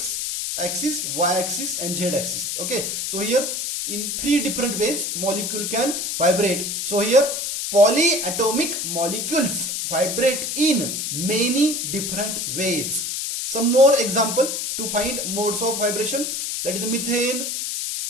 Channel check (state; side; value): noise; left; hiss, 2 dB below the sound